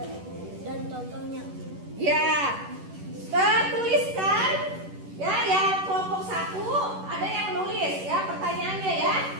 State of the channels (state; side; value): late; left; 11 ms